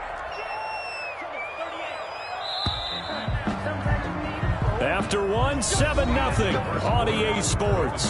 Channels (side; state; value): both; identical; correlation 1.00